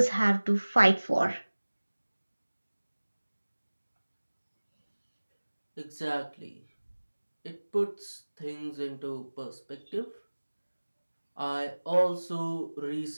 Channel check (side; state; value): both; inverted; correlation -1.00